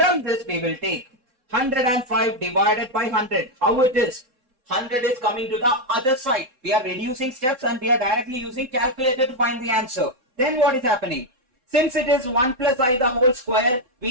this we will take 105 divided by 100. How it is? 100 is coming to the other side. We are reducing steps and we are directly using calculator to find the answer. Then what is happening? Since it is 1 plus I the whole square,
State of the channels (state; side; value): late; left; 3.9 ms